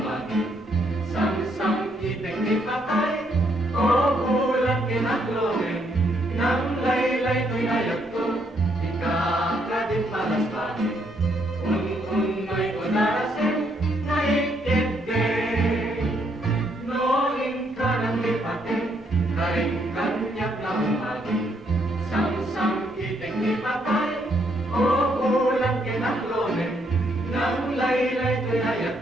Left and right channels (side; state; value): both; normal; correlation 0.73